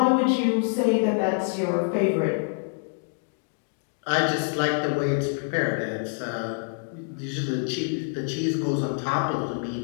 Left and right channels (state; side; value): silent; right; 59 dB below the other